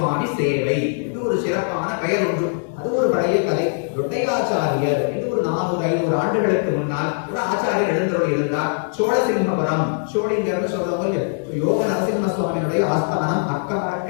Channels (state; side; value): silent; right; digital silence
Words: சேவை இது ஒரு சிறப்பான பெயர் உண்டு. அது ஒரு பழைய கதை. தொட்டையாச்சாரியர் இது ஒரு 400-500 ஆண்டுகளுக்கு முன்னால் ஒரு ஆச்சாரியர் எழுந்தருளி இருந்தார். சோழசிம்மபுரம், சோழிங்கர்னு சொல்றவங்க யோக நரசிம்ம சுவாமியுடைய ஆஸ்தானம்